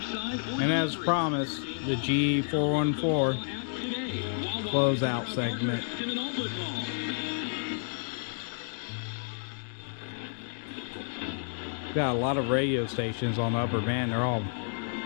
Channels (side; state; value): right; silent; digital silence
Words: And as promised, the G414 closeout segment. Got a lot of radio stations on the upper band. They're all